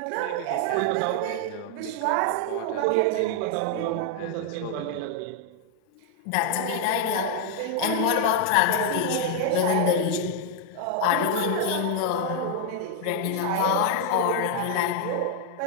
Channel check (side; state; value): both; different; correlation 0.00